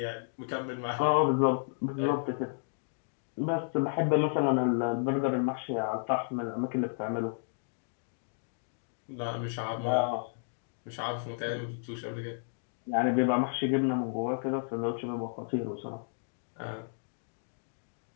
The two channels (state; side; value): silent; right; digital silence